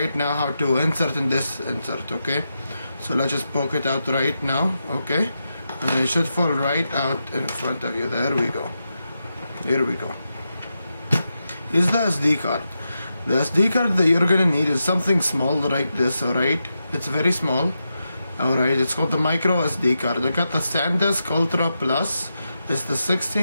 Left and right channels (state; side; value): inverted; both; correlation -0.87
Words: now how to insert in this insert. Okay, so let's just poke it out right now. Okay, and it should fall right out in front of you. There we go. Here we go. Here's the SD card. The SD card that you're gonna need is something small like this. Alright, it's very small. Alright, it's called the micro SD card. I got the SanDisk Ultra Plus. It's the